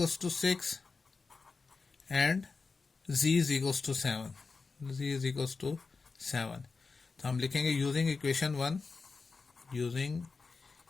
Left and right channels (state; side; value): quieter; right; 4.4 dB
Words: to 6 and z is equal to 7, z is equal to 7। तो हम लिखेंगे using equation 1, using